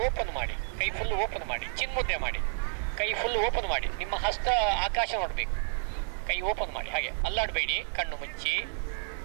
ಓಪನ್ ಮಾಡಿ, ಕೈ ಫುಲ್ ಓಪನ್ ಮಾಡಿ, ಚಿನ್ಮುದ್ರೆ ಮಾಡಿ, ಕೈ ಫುಲ್ ಓಪನ್ ಮಾಡಿ. ನಿಮ್ಮ ಹಸ್ತ ಆಕಾಶ ನೋಡಬೇಕು, ಕೈ ಓಪನ್ ಮಾಡಿ, ಹಾಗೆ ಅಲ್ಲಾಡಬೇಡಿ. ಕಣ್ಣು ಮುಚ್ಚಿ,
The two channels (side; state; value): left; silent; digital silence